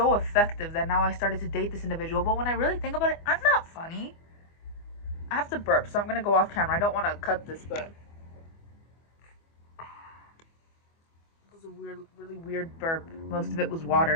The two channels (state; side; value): late; right; 24 ms